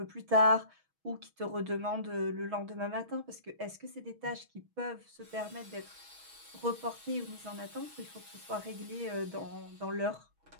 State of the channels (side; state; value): left; late; 6.2 ms